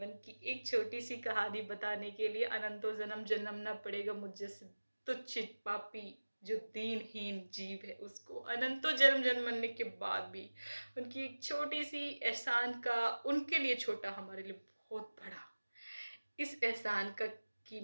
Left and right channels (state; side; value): inverted; both; correlation -1.00